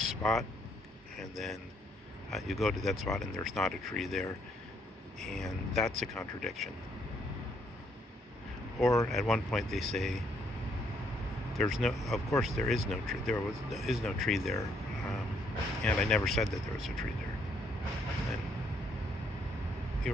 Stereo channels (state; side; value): normal; both; correlation 0.71